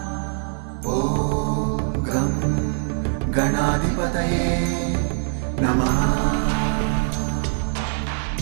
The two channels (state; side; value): silent; left; 64 dB below the other